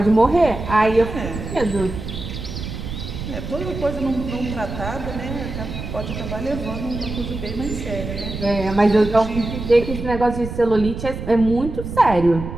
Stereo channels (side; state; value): right; noise; rumble, 7 dB below the sound